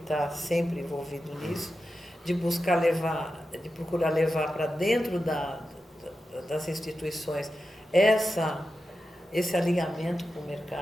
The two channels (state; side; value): normal; both; correlation 0.91